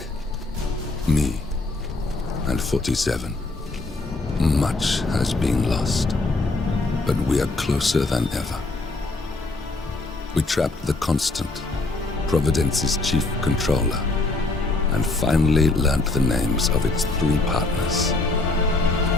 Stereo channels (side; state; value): right; quieter; 3.2 dB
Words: Me and 47. Much has been lost, but we are closer than ever. We trapped the Constant, Providence's chief controller, and finally learnt the names of its 3 partners.